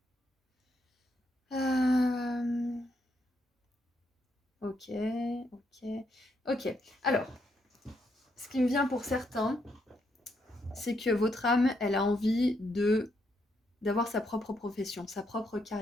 euh... Ok, ok, ok. Alors, ce qui me vient pour certains, c'est que votre âme, elle a envie d'avoir sa propre profession, sa propre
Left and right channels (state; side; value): normal; both; correlation 0.77